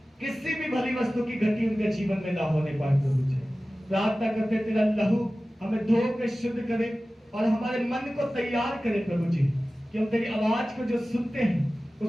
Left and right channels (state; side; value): normal; both; correlation 0.96